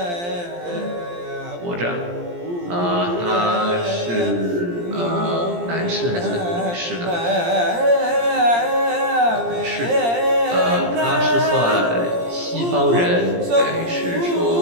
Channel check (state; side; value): late; left; 17 ms